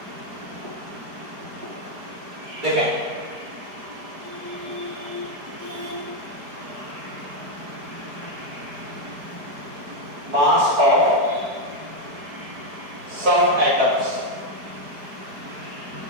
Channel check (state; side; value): late; left; 4.8 ms